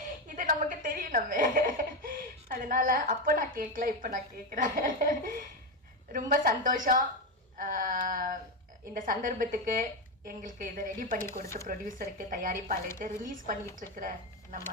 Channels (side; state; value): both; normal; correlation 0.11